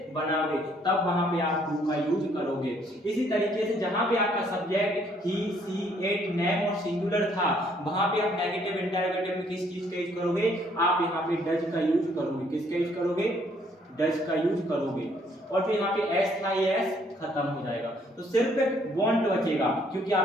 बनाओगे तब वहां पे आप do का यूज करोगे। इसी तरीके से जहां पे आपका subject he she it name और सिंगुलर था वहां पे आप नेगेटिव इंटरोगेटिव में किस चीज का यूज करोगे, आप यहाँ पे डज का यूज करोगे। किसका यूज करोगे, डज का यूज करोगे। और फिर यहाँ पे एस था, ये एस खत्म हो जाएगा, तो सिर्फ want बचेगा क्योंकि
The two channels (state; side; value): normal; both; correlation 0.65